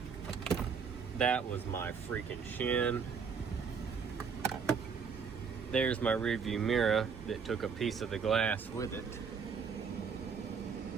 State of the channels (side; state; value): left; quieter; 6.0 dB